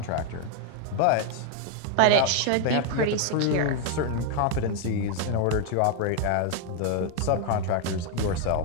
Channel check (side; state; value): both; different; correlation 0.01